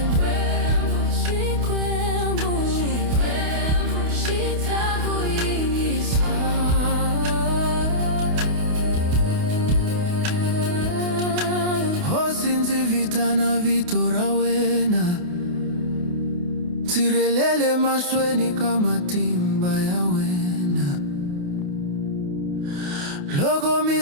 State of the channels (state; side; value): late; left; 28 ms